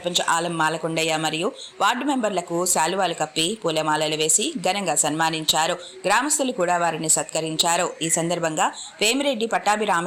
ఆలం మాలకొండయ్య మరియు వార్డు మెంబర్లకు శాలువాలు కప్పి పూలమాలలు వేసి ఘనంగా సన్మానించారు. గ్రామస్తులు కూడా వారిని సత్కరించారు. ఈ సందర్భంగా వేమిరెడ్డి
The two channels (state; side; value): identical; both; correlation 1.00